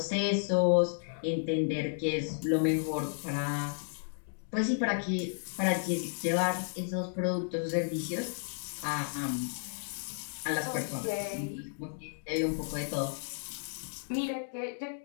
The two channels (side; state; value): right; silent; digital silence